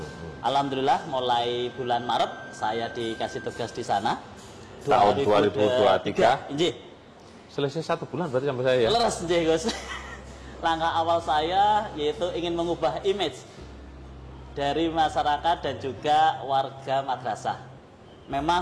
Alhamdulillah mulai bulan Maret saya dikasih tugas di sana. Tahun 2023. Injih. Selesai 1 bulan berarti sampai saya ya. Leres injih, Gus. Langkah awal saya yaitu ingin mengubah image dari masyarakat dan juga warga madrasah.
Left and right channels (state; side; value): identical; both; correlation 1.00